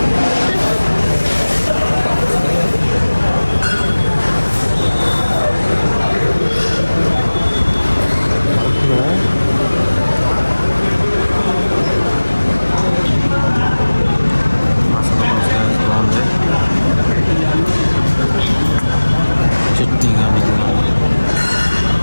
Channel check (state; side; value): inverted; both; correlation -1.00